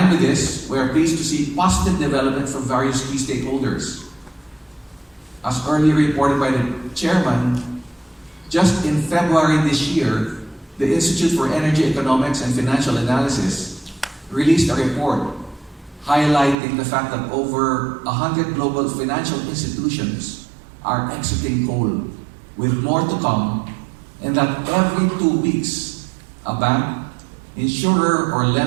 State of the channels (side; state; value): left; drops out; at 16.6 s